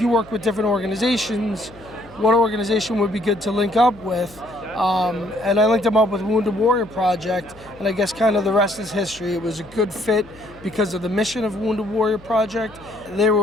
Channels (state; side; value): noise; left; hum, 23 dB below the sound